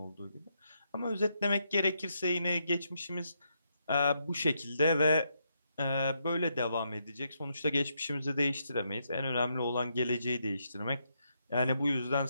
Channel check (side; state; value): both; inverted; correlation -0.79